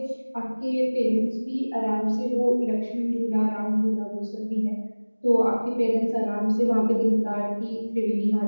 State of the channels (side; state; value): both; inverted; correlation -1.00